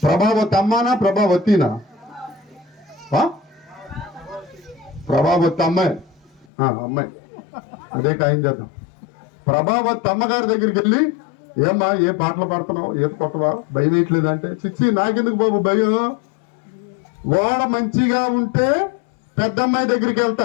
ప్రభావతి అమ్మానా ప్రభావతినా? ప్రభావతి అమ్మాయి, అమ్మాయి అదే ఖాయం చేద్దాం. ప్రభావతి అమ్మగారి దగ్గరికి వెళ్ళి, ఏమ్మా ఏ పాటలు పాడుతున్నావు, ఏ కొట్టవా, భయం వేయట్లేదు అంటే, చిచ్చి నాకెందుకు బాబు భయం, వాడ మంచిగా ఉంటే పెద్దమ్మాయి దగ్గరికి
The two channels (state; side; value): drops out; right; at 6.5 s